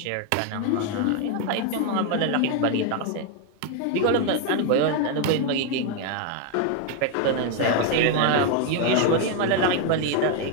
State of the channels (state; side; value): different; both; correlation 0.01